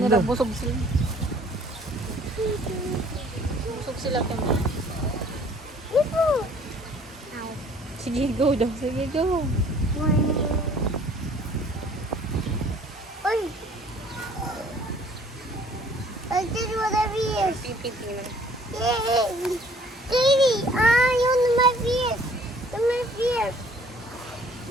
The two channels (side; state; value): both; normal; correlation 0.56